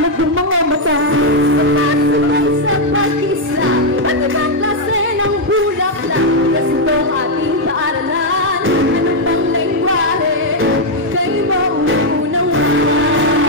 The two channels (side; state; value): both; normal; correlation -0.01